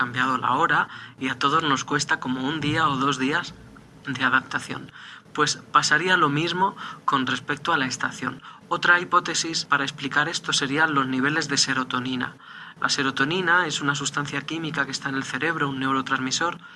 la hora y a todos nos cuesta como 1 día o 2 días de adaptación. Pues pasaría lo mismo con respecto a la estación. Otra hipótesis para explicar esto serían los niveles de serotonina. La serotonina es una sustancia química que está en el cerebro, un neurotransmisor,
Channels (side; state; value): both; identical; correlation 1.00